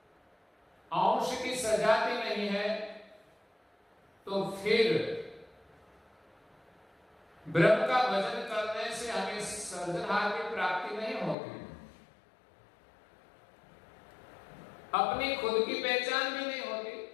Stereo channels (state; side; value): drops out; right; at 11.4 s